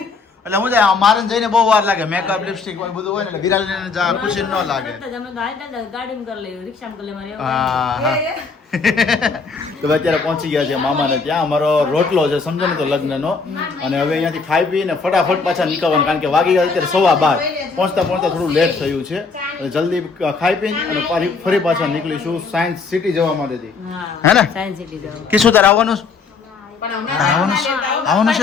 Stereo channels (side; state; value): right; quieter; 4.7 dB